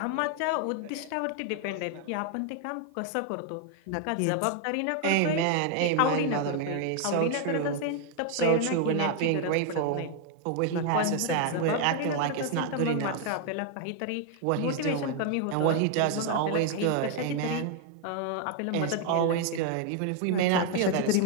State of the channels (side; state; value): both; different; correlation 0.00